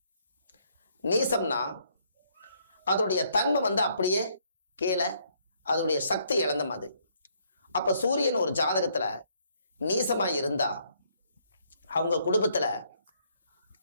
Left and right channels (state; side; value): inverted; both; correlation -0.68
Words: நீசம்னா அதோடைய தன்மை அப்படியே கீழே, அதோடைய சக்தி இழந்த மாதிரி. அப்ப சூரியன் ஒரு ஜாதகத்துல நீசமா இருந்தா அவங்க குடும்பத்துல